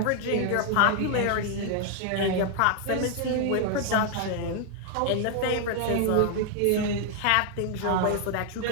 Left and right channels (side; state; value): both; different; correlation 0.00